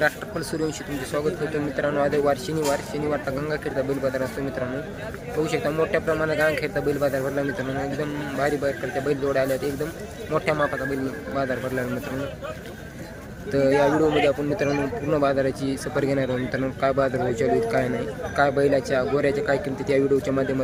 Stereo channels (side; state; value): both; identical; correlation 1.00